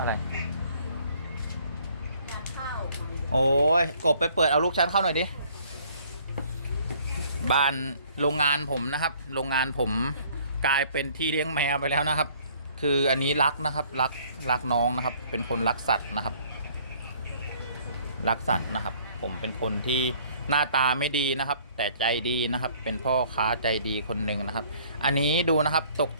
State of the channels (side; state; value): both; inverted; correlation -0.58